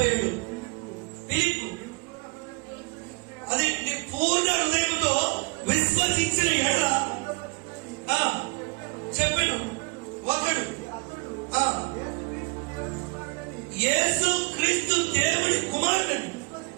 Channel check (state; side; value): quieter; left; 30.6 dB